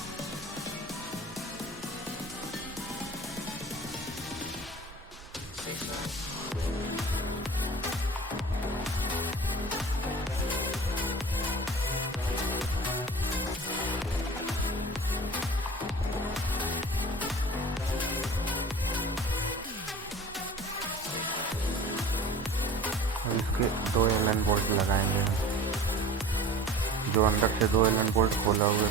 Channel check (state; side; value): normal; both; correlation 0.41